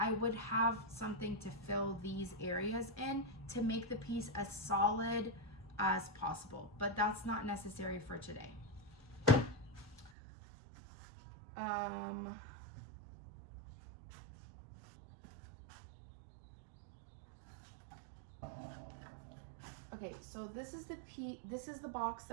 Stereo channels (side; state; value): left; drops out; at 10.1 s